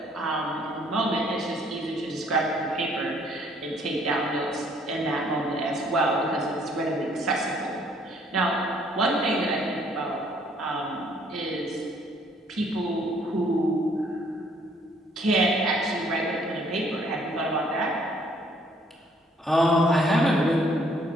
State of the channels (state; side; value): normal; both; correlation 0.63